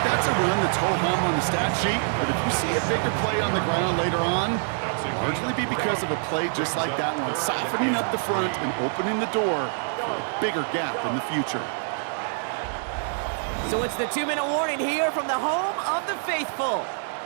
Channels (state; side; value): silent; left; digital silence